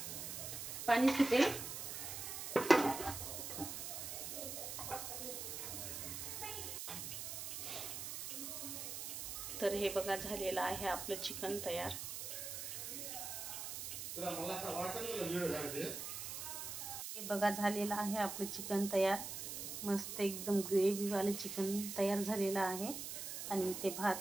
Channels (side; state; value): right; noise; hiss, 6 dB below the sound